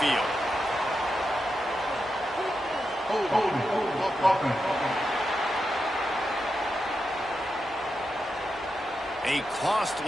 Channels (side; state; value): both; normal; correlation 0.87